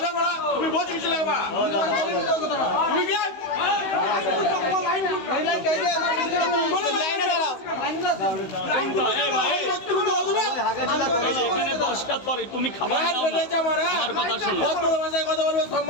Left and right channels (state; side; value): late; right; 16 ms